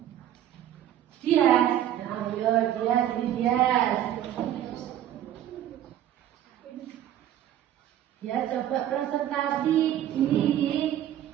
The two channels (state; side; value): quieter; left; 11.6 dB